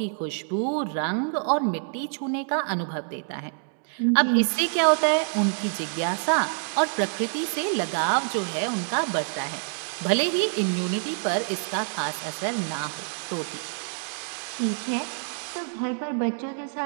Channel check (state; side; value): silent; left; 60 dB below the other